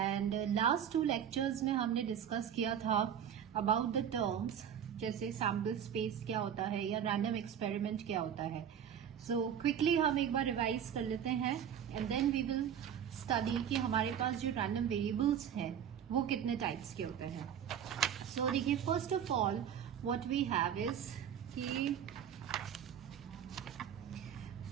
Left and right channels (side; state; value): left; quieter; 8.9 dB